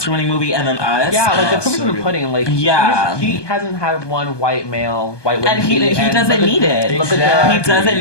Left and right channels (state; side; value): late; right; 1.2 ms